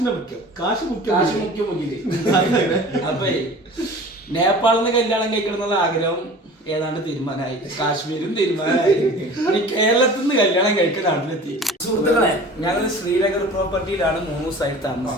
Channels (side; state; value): both; normal; correlation 0.41